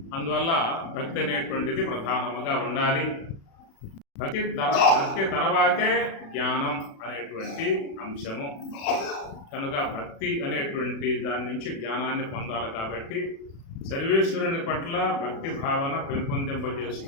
అందువల్ల భక్తి అనేటువంటిది ప్రధానముగా ఉండాలి. భక్తి తర్వాతే జ్ఞానం అనేటువంటి అంశము. కనుక భక్తి అనేటువంటి దాని నుంచి జ్ఞానాన్ని పొందాలి. కాబట్టి సర్వేశ్వరుని పట్ల భక్తి భావన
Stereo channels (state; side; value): late; right; 36 ms